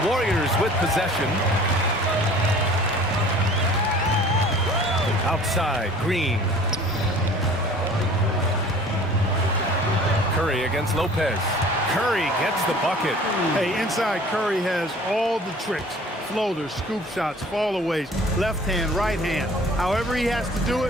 Warriors with possession. Outside, Green. Curry against Lopez. Curry gets the bucket. Hey, inside Curry has all the tricks. Floaters, scoop shots, fallaways, left hand, right hand. However he has to do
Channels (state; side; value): normal; both; correlation 0.48